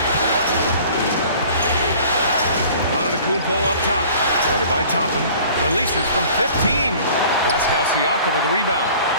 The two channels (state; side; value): inverted; both; correlation -0.48